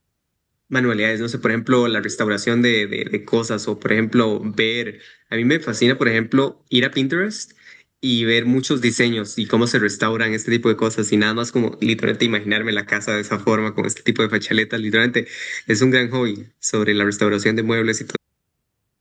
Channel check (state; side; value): identical; both; correlation 1.00